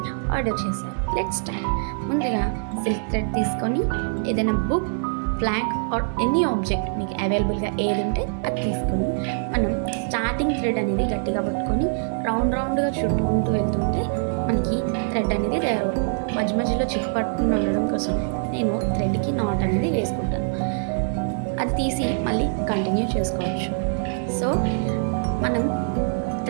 ఆర్డర్ చేశారు. Let's start. ముందుగా సిల్క్ థ్రెడ్ తీసుకొని ఏదైనా book, flag or any object మీకు అవైలబుల్గా ఏది ఉంటే అది తీసుకొని మనం స్టార్టింగ్ థ్రెడ్ అనేది గట్టిగా పట్టుకొని రౌండ్గా చుట్టుకుంటూ వెళ్తుంటే మనకి థ్రెడ్ అనేది తయారవుతుంది. మధ్యలో చిక్కు పట్టుకుని ఉండడం కోసం నేను థ్రెడ్కి నాట్ అనేది వేసుకుంటాను. అది తీసి మళ్ళీ కంటిన్యూ చేసుకోవచ్చు. సో మనం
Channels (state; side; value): silent; left; digital silence